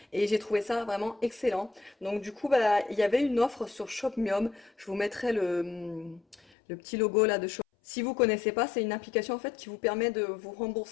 et j'ai trouvé ça vraiment excellent. Donc du coup bah il y avait une offre sur Shopmium. Je vous mettrai le petit logo là de Shop. Si vous connaissez pas, c'est une application en fait qui vous permet de vous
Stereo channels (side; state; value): right; drops out; at 6.4 s